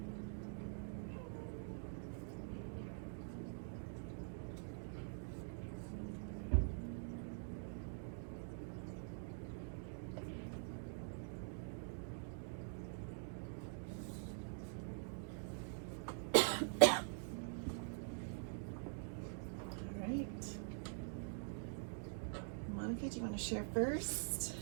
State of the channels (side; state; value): left; silent; digital silence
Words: Monica, do you want to share first?